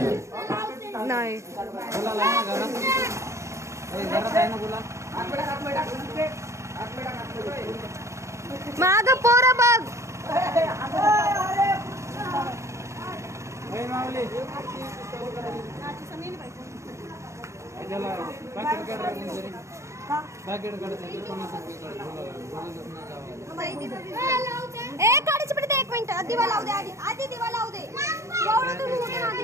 नाही माग पोर बघ. काढायची पडते. 1 मिनिट दिवा लावू दे. आधी दिवा लावू दे.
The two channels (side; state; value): left; late; 0.14 ms